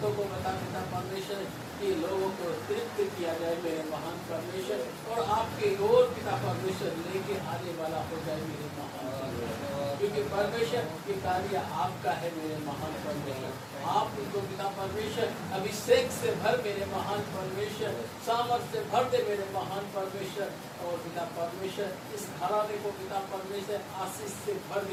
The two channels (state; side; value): identical; both; correlation 1.00